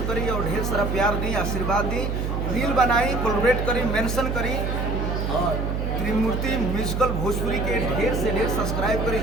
करी और ढेर सारा प्यार दी, आशीर्वाद दी, रील बनाई, कोलैबोरेट करी, मेंशन करी और त्रिमूर्ति म्यूजिकल भोजपुरी के ढेर से ढेर सब्सक्राइब करी,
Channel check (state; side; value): noise; right; hum, 1 dB below the sound